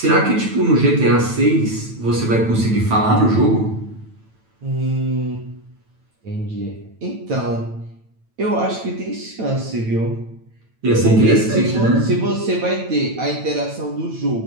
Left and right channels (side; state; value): left; late; 9.1 ms